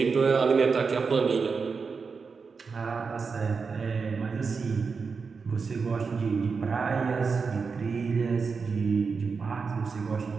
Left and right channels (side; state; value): left; quieter; 5.1 dB